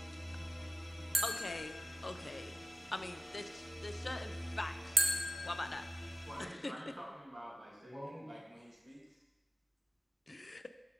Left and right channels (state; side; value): normal; both; correlation 0.95